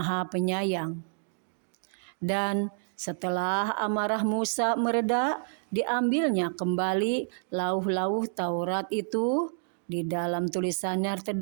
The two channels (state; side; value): silent; left; digital silence